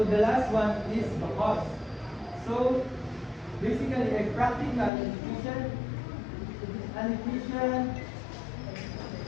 the last one is the cost. So basically a practical and efficient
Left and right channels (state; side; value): drops out; right; at 4.9 s